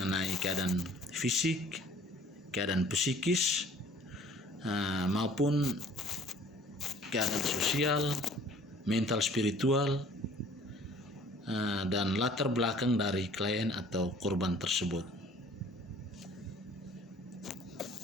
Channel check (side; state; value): both; normal; correlation 0.53